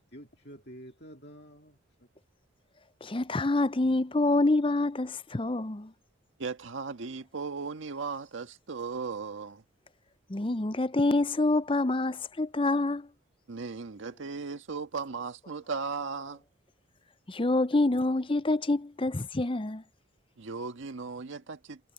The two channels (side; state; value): both; normal; correlation 0.61